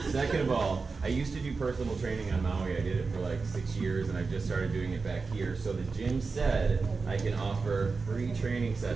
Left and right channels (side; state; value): left; quieter; 4.4 dB